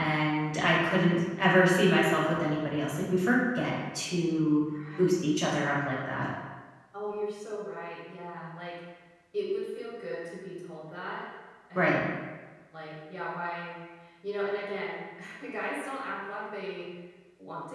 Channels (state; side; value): identical; both; correlation 1.00